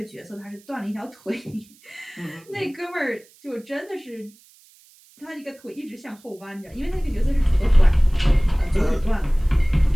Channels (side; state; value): right; noise; hiss, 28 dB below the sound